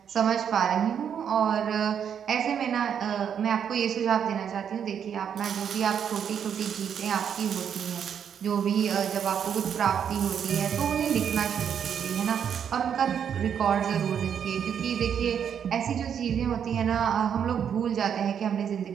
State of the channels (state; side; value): quieter; left; 8.2 dB